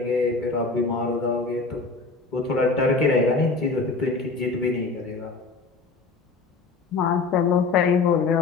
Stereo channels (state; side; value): quieter; right; 4.1 dB